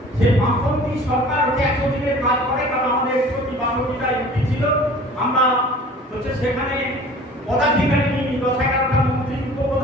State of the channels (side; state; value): both; normal; correlation 0.46